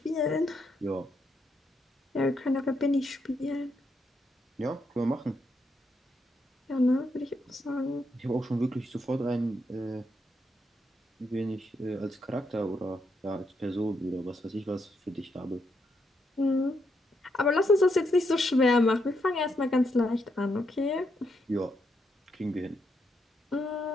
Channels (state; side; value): normal; both; correlation 0.79